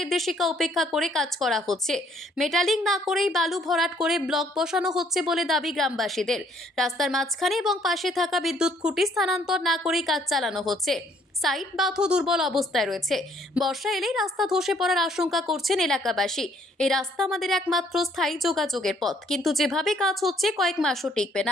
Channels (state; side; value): normal; both; correlation 0.64